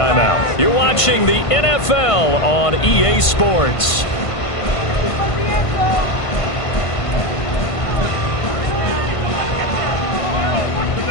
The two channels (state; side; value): late; right; 1.5 ms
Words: You're watching the NFL on EA Sports.